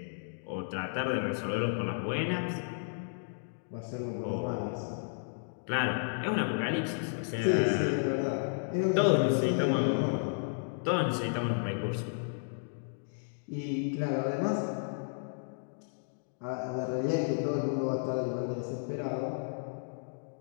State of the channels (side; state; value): right; silent; digital silence